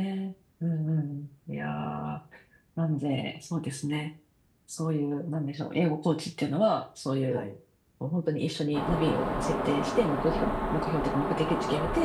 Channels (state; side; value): identical; both; correlation 1.00